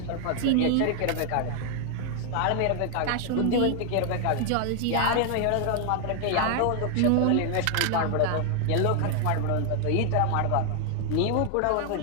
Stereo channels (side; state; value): both; different; correlation 0.00